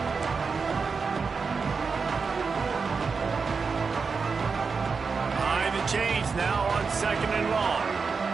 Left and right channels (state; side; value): quieter; left; 5.1 dB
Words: Behind the chains now on second and long.